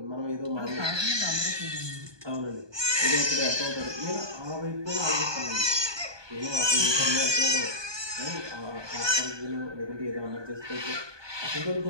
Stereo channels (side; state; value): left; late; 1.2 ms